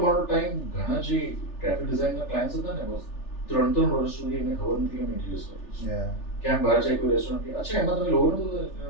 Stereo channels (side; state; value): right; late; 3.4 ms